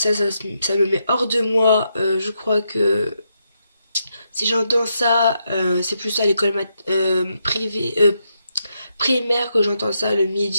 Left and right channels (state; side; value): inverted; both; correlation -0.82